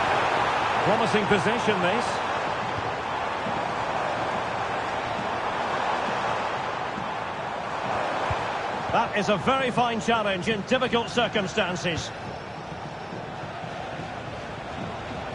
Promising possession, this. That is a very fine challenge in difficult circumstances.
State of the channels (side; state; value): both; identical; correlation 1.00